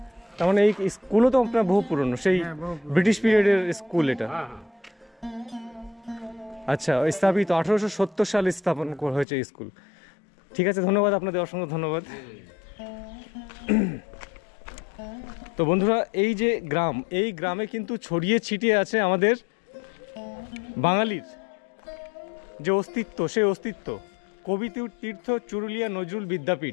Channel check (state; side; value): drops out; right; at 9.2 s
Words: তার মানে এই স্কুলও তো আপনার বহু পুরনো, সেই ব্রিটিশ পিরিয়ডের স্কুল এটা। আচ্ছা, স্থাপিত 1870 সালে স্থাপন হয়েছে এই স্কুল। ঠিক আছে, ধন্যবাদ আপনাদের, অসংখ্য ধন্যবাদ। তো বন্ধুরা, এই যে গ্রাম, এই গ্রামে কিন্তু ছড়িয়ে ছিটিয়ে আছে আমাদের বাঙালির যে অস্তিত্ব, সেই অস্তিত্ব। কবি তীর্থ চুরুলিয়া নজরুল